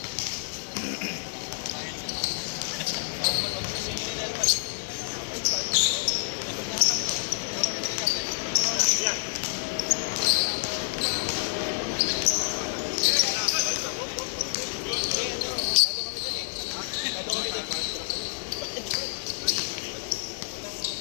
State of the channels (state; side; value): silent; right; 58 dB below the other